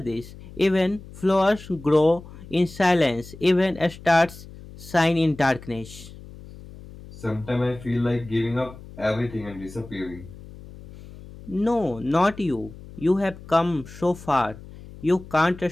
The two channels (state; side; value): noise; left; hum, 17 dB below the sound